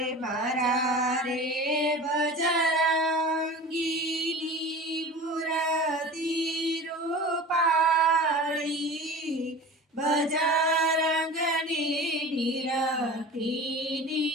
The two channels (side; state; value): both; normal; correlation 0.36